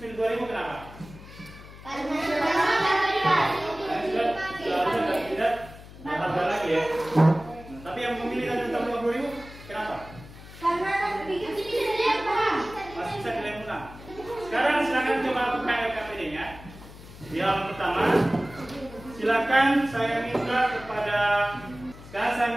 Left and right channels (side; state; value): left; noise; hum, 17 dB below the sound